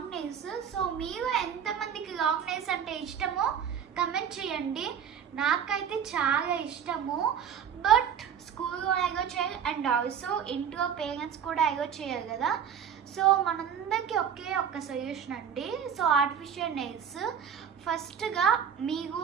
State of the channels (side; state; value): left; quieter; 8.1 dB